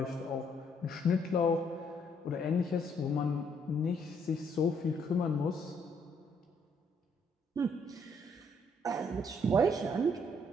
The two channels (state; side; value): normal; both; correlation 0.69